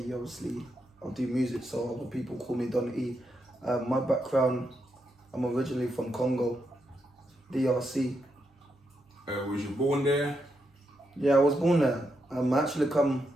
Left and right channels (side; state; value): both; normal; correlation 0.82